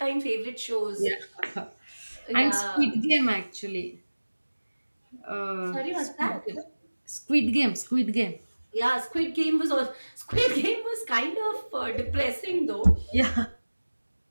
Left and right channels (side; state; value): both; inverted; correlation -1.00